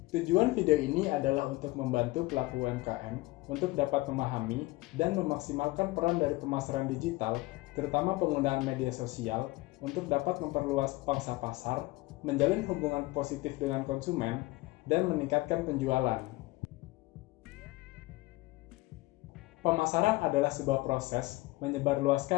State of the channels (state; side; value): quieter; right; 20.9 dB